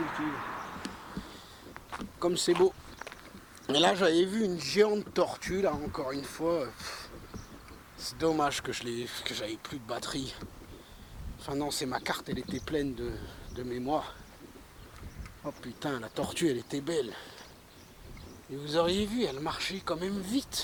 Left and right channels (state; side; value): identical; both; correlation 1.00